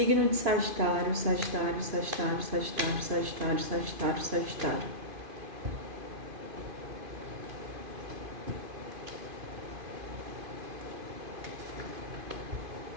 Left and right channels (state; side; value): late; left; 2.5 ms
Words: de Sagitário, Sagitário, Sagitário, Sagitário, Sagitário, Sagitário, Sagitário.